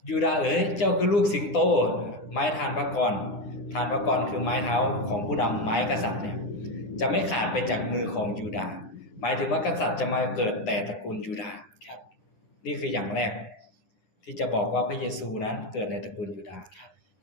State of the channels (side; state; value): right; late; 10 ms